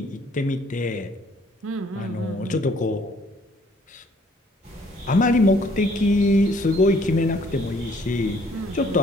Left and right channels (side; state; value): both; normal; correlation 0.62